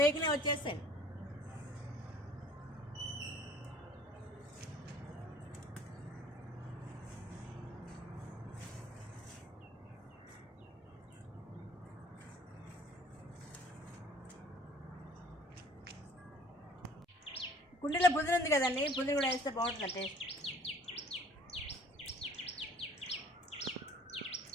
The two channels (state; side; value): normal; both; correlation 0.53